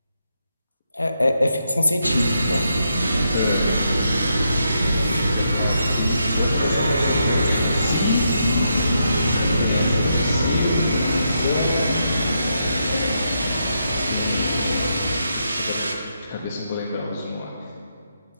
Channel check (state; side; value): inverted; both; correlation -0.81